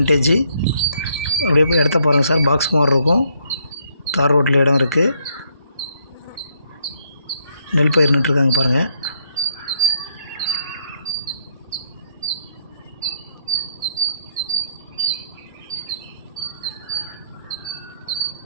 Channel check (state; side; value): inverted; both; correlation -0.71